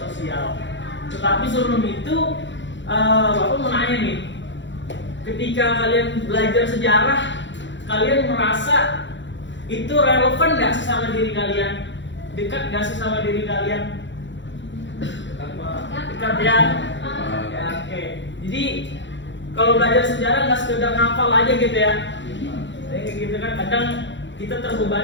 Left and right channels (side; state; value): right; late; 0.54 ms